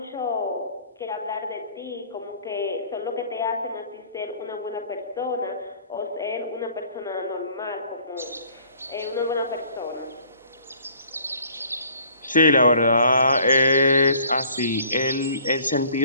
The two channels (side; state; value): both; inverted; correlation -0.56